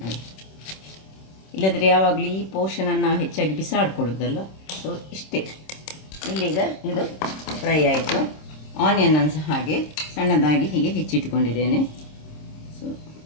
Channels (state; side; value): late; right; 26 ms